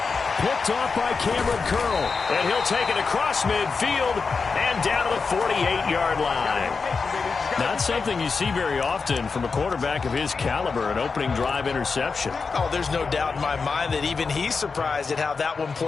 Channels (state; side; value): quieter; right; 4.8 dB